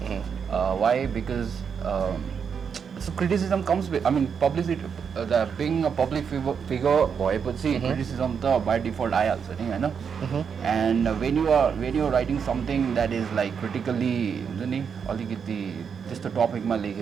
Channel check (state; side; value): quieter; left; 6.7 dB